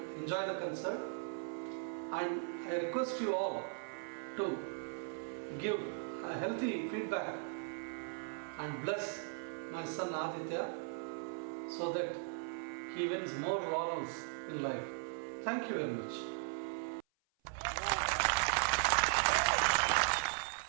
enjoy the concert, and I request you all to give a healthy feedback and bless my son Aditya so that he wins more laurels in life. Thank you very much.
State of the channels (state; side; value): silent; left; 52 dB below the other